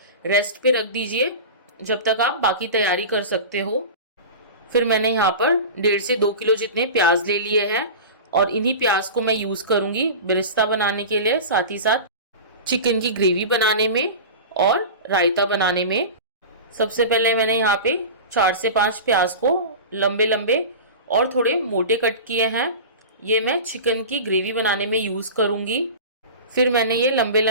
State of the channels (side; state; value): both; inverted; correlation -0.30